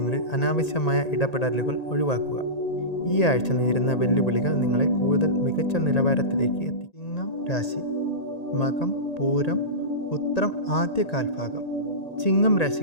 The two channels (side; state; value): right; late; 1.9 ms